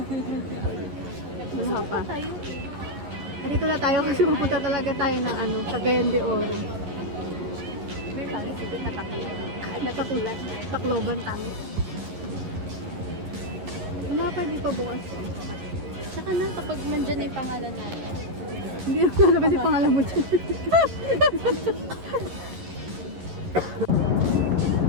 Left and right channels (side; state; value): left; late; 11 ms